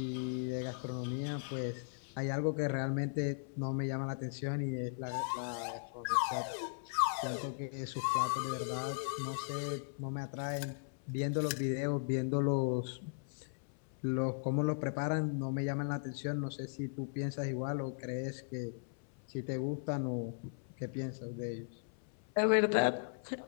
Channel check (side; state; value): right; silent; 53 dB below the other